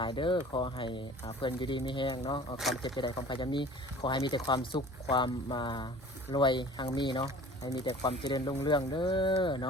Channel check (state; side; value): normal; both; correlation 0.45